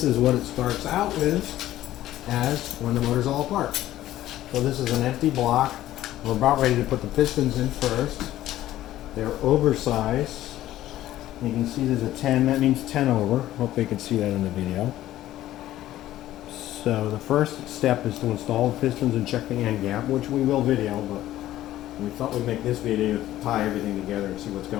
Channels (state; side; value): quieter; right; 14.0 dB